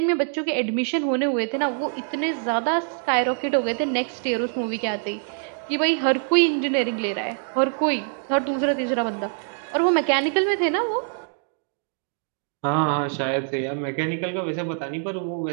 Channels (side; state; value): left; silent; digital silence